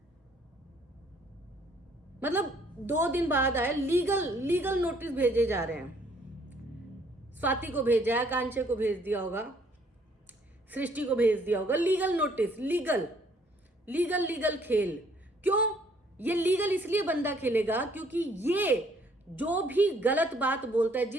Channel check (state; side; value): normal; both; correlation 0.63